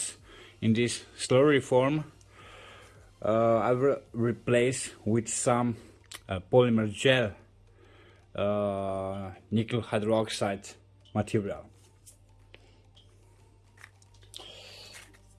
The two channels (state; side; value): identical; both; correlation 1.00